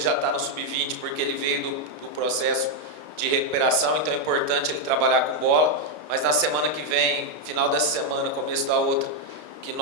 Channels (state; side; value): late; left; 33 ms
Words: já está no Sub-20 porque ele veio do processo de recuperação, então é importante ele trabalhar com bola. Mas na semana que vem, final dessa semana, começo da outra, que